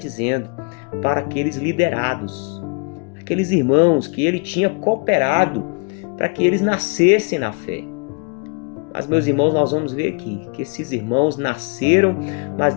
para aqueles liderados, aqueles irmãos que ele tinha cooperado para que eles nascessem na fé. Mas, meus irmãos, nós vamos ver aqui que esses irmãos nasceram, mas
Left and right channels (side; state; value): right; quieter; 35.1 dB